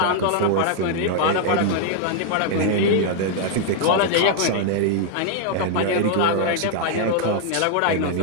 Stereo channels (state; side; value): different; both; correlation 0.00